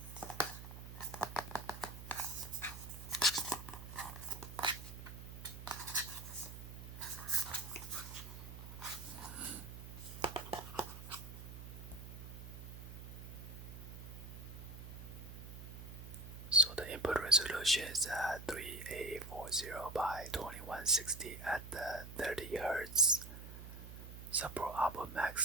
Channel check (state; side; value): noise; right; hum, 11 dB below the sound